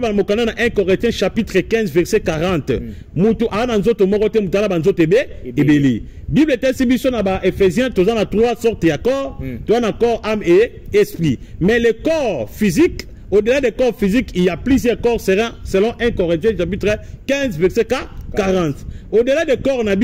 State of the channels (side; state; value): both; identical; correlation 1.00